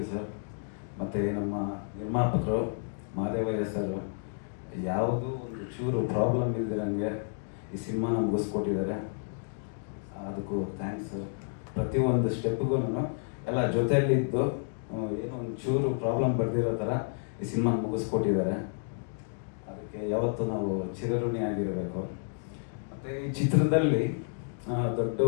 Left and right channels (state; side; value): silent; right; digital silence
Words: ಸರ್. ಮತ್ತು ನಮ್ಮ ನಿರ್ಮಾಪಕರು ಮಹಾದೇವಯ್ಯ ಸರ್ ಯಾವುದೂ ಒಂದು ಚೂರು ಪ್ರಾಬ್ಲಮ್ ಇಲ್ದಿರಂಗೆ ಈ ಸಿನಿಮಾನ ಮುಗಿಸ್ಕೊಟ್ಟಿದ್ದಾರೆ. ಅದಕ್ಕೂ ಥ್ಯಾಂಕ್ಸ್ ಸರ್. ಪ್ರತಿಯೊಂದು ಸ್ಟೆಪ್ಗೂ ಎಲ್ಲ ಜೊತೆಯಲ್ಲಿದ್ದು ಏನೋ ಒಂದು ಚೂರು ಪ್ರಾಬ್ಲಮ್ ಬರ್ದಿರೋ ಥರ ಈ ಸಿನಿಮಾ ಮುಗಿಸ್ಕೊಟ್ಟಿದ್ದಾರೆ. ಅದಕ್ಕೆ ಯಾವತ್ತೂ ನಾವು ಚಿರಋಣಿ ಆಗಿರಬೇಕು. ಮತ್ತು ಈ ಚಿತ್ರದಲ್ಲಿ ದೊಡ್ಡ